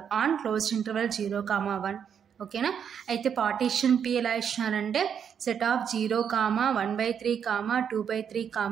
on closed interval 0, 1. ఓకేనా. అయితే పార్టీషన్ P ఎలా ఇచ్చినారంటే సెట్ ఆఫ్ 0, 1/3,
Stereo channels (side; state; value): left; quieter; 7.8 dB